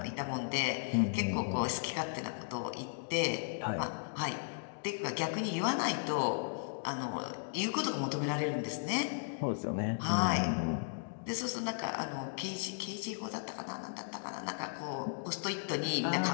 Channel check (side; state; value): right; silent; digital silence